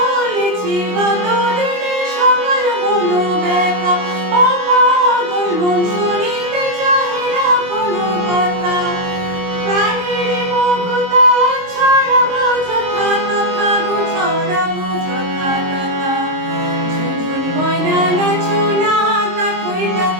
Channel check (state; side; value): late; left; 22 ms